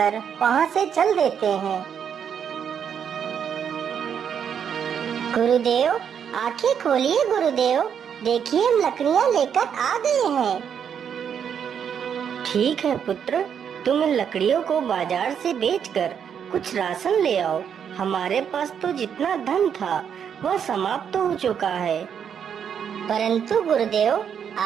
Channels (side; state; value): left; quieter; 8.0 dB